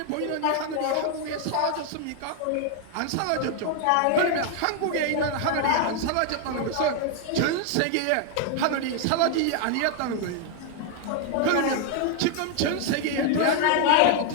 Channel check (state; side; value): different; both; correlation 0.00